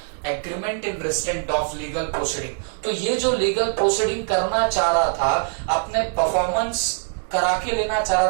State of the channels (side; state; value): left; silent; digital silence